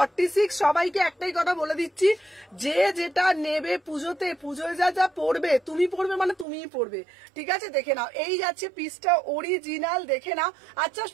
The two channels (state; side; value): drops out; left; at 6.5 s